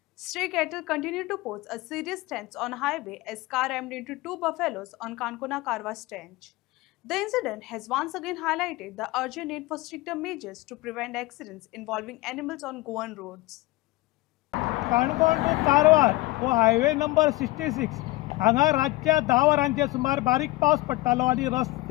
Stray cattle continue to pose a serious threat on highway as car rammed into two buffaloes on Kankona Karwa Stanch. The incident has once again highlighted the urgent need for stricter measures to prevent accidents involving animals on Goan roads. Canacona to Karwar हो highway number 66 हांगा रातच्या 10 वरांचे सुमार बारीक पावस पडटालो आनी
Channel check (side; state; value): right; quieter; 20.0 dB